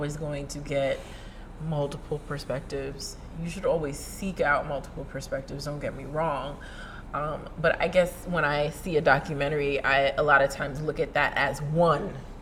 going to get multiple perspectives. You should always seek out multiple perspectives, don't get me wrong. But I guess when I see a documentary, I a lot of times look at that as one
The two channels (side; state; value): both; identical; correlation 1.00